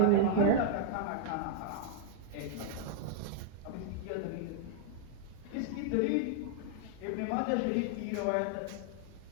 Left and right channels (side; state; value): both; different; correlation -0.01